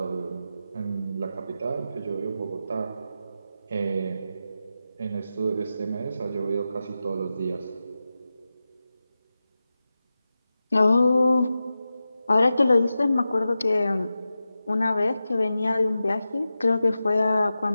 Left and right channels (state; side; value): inverted; both; correlation -0.92